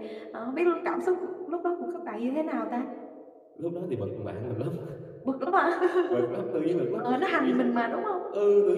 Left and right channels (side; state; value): both; identical; correlation 1.00